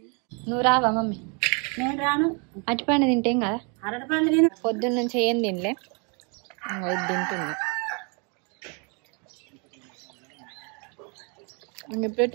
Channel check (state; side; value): quieter; left; 35.1 dB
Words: నువ్వు రావా మమ్మీ? నేను రాను. అరటిపండు తింటేం కదా, అరటిపండు నేను పొద్దున్న నుంచి ఏం తినలే, ఇది తింటున్నా. ఇప్పుడు